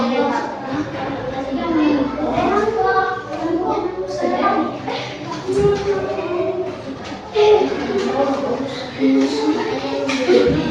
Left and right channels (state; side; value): identical; both; correlation 1.00